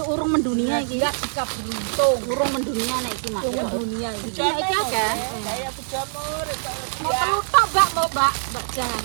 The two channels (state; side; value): silent; left; digital silence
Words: urung mendunia iki. Enggak jika beruntung. Urung mendunia nek iki Mak. Dunia ini. Nek iki akeh. Saya pejamur. Mau telu tok, Mbak, mau Mbak. Mbak jangan